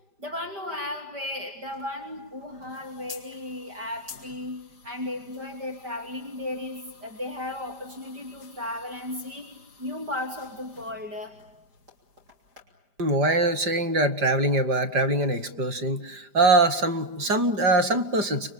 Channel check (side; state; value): left; late; 5.0 ms